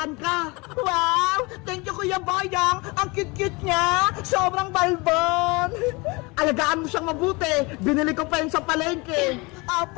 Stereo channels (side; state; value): right; quieter; 26.2 dB